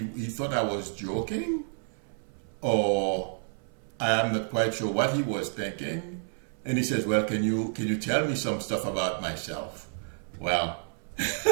thought I was joking, or I am not quite sure what he was thinking. And he says, well, can you tell me some stuff about myself? Well,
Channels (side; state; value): left; silent; 58 dB below the other